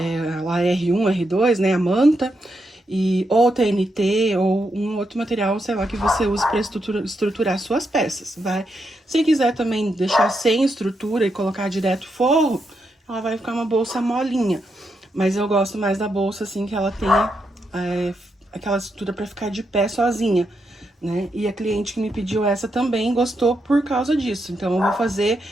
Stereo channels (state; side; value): normal; both; correlation 0.82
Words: R1, R2, né, a manta, ou TNT, ou um outro material, sei lá, que você use para estruturar suas peças, vai. Se quiser também deixar sem estrutura e colocar direto forro, ela vai ficar uma bolsa molinha. Mas eu gosto mais da bolsa, assim, que ela tenha aquela estrutura para ficar de pé sozinha, né? E a cliente que me pediu essa também gostou por causa disso. Então, eu vou fazer